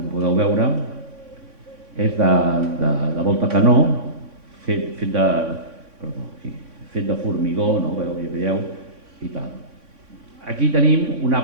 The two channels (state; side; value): late; left; 3.6 ms